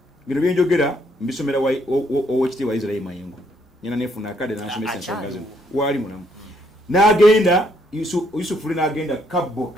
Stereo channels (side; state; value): both; normal; correlation 0.70